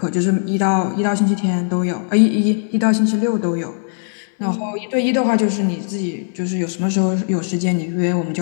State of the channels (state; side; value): silent; right; 67 dB below the other